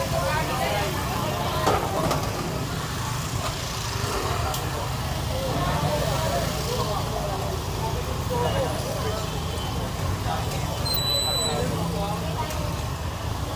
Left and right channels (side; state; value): both; identical; correlation 1.00